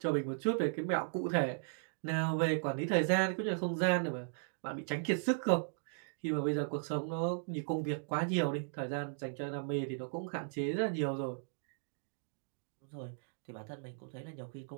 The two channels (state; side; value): silent; left; digital silence